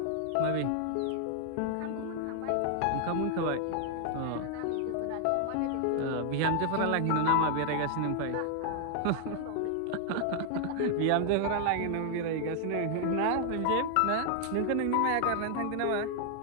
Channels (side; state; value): both; different; correlation 0.00